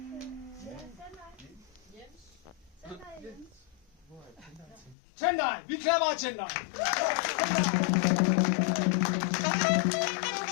Tendai, vi klapper af Tendai.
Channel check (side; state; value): right; drops out; at 5.0 s